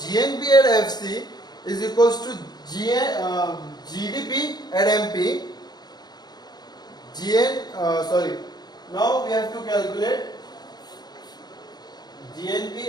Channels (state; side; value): late; right; 0.20 ms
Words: at FC is equals to GDP at MP. Now we have to calculate